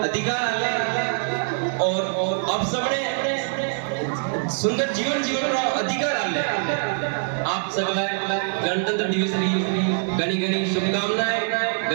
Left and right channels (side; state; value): left; silent; digital silence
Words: अधिकार आले और अब सबने सुंदर जीवन जीवन रो अधिकार आले। आप सगला गणतंत्र दिवस की घनी घनी शुभकामनाएं